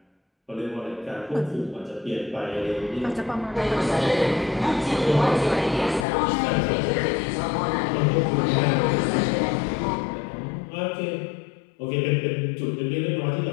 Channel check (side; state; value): right; drops out; at 6.1 s